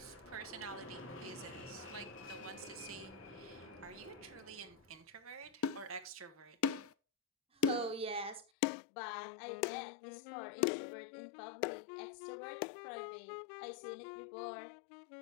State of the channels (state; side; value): drops out; right; at 8.5 s